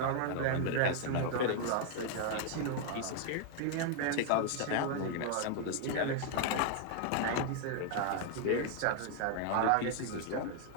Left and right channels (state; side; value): different; both; correlation 0.00